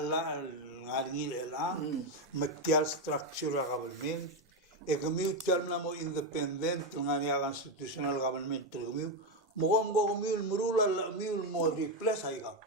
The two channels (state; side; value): normal; both; correlation 0.08